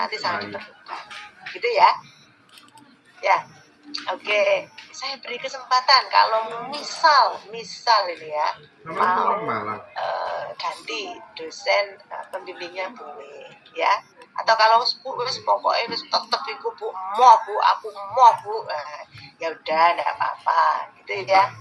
sangat diperlukan gitu ya. Oke, saya beri kesempatan kalau misal ini ya mau ganti dosen pembimbingnya boleh ya, atau kalau pokoknya tetap iku Bu, aku mau Bu, ya udah enggak apa-apa. gitu ya.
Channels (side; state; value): both; identical; correlation 1.00